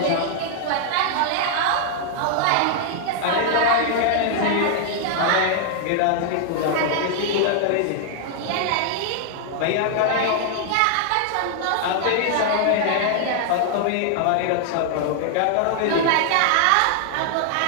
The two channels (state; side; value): different; both; correlation -0.01